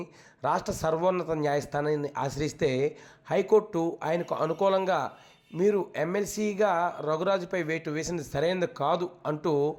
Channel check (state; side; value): identical; both; correlation 1.00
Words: రాష్ట్ర సర్వోన్నత న్యాయస్థానాన్ని ఆశ్రయిస్తే హైకోర్టు ఆయనకు అనుకూలంగా మీరు ఎమ్మెల్సీగా రఘురాజుపై వేటు వేసినది సరైనది కాదు అంటూ